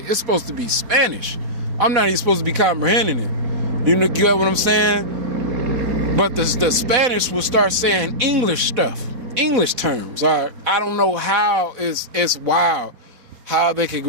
It's supposed to be Spanish. I'm not even supposed to be comprehending it. You get what I'm saying? But the Spanish will start saying English stuff, English terms. I don't know how it's wild how they could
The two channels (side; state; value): left; late; 4.0 ms